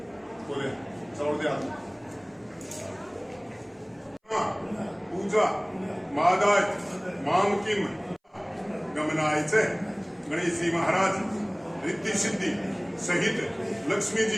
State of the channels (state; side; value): identical; both; correlation 1.00